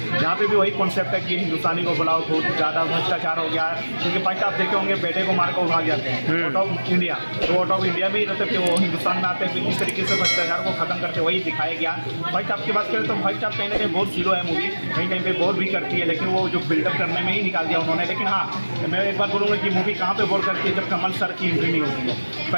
यहाँ पे भी वही कॉन्सेप्ट है कि हिंदुस्तानी को बुलाओ, बहुत ज़्यादा भ्रष्टाचार हो गया है। क्योंकि फर्स्ट आप देखे होंगे बेटे को मार कर भाग जाते हैं आउट ऑफ इंडिया, तो आउट ऑफ इंडिया भी रहते थे वो हिंदुस्तान में आते हैं। इस तरीके से भ्रष्टाचार को ख़त्म करते वही दिखाया गया। फर्स्ट आपकी बात करें तो फर्स्ट आप कहीं ना कहीं बहुत जीरो है मूवी, कहीं कहीं पे बोर भी करती है, लेकिन वो जो बिल्डअप करने में ही निकाल दिया उन्होंने। लेकिन हाँ, मैं एक बात बोलूँगा कि मूवी कहाँ पे बोर करती है, जब कमल सर की एंट्री नहीं होती है।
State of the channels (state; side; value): inverted; both; correlation -1.00